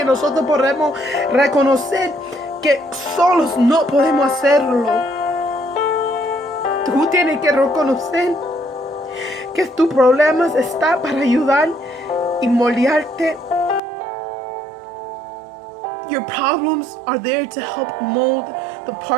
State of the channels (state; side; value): drops out; left; at 13.8 s